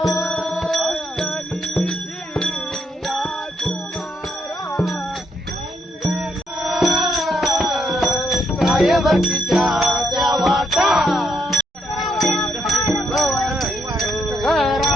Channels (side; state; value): both; normal; correlation 0.75